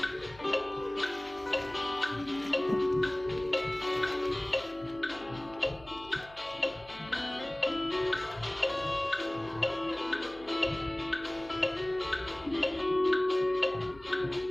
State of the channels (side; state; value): left; noise; hum, 23 dB below the sound